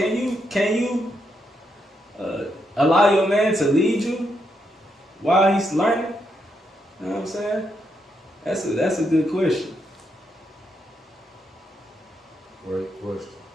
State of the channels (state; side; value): normal; both; correlation 0.80